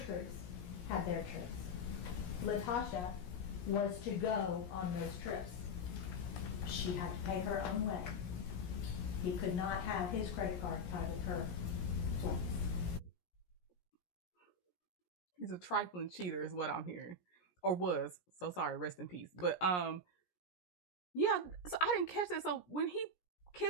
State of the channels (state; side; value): late; right; 17 ms